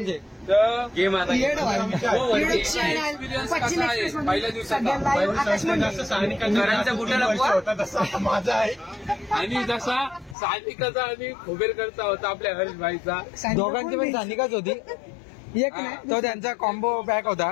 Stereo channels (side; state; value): right; drops out; at 10.4 s